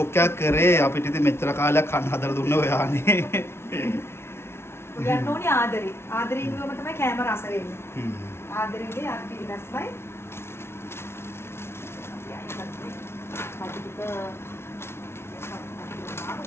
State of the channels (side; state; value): right; late; 0.12 ms